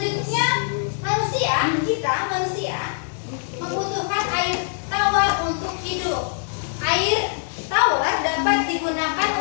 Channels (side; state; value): right; silent; digital silence